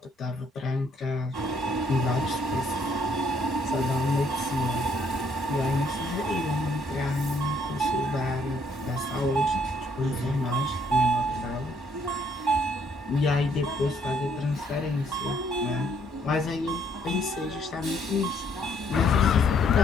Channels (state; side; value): normal; both; correlation 0.68